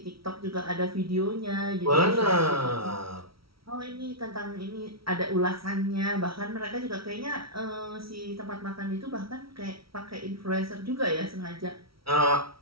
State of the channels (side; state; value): left; late; 0.75 ms